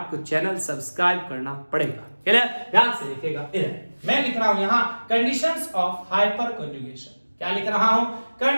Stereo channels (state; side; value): inverted; both; correlation -1.00